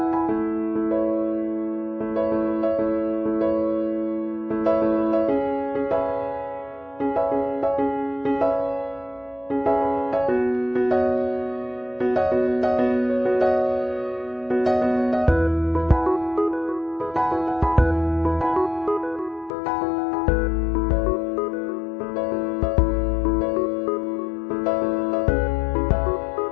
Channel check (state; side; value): drops out; right; at 19.5 s